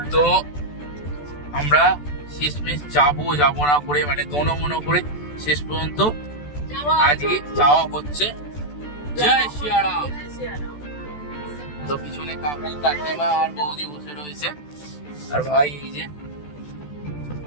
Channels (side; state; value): right; late; 14 ms